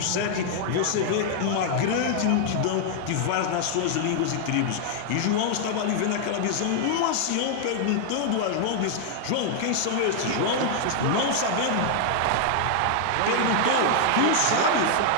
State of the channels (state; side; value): different; both; correlation 0.00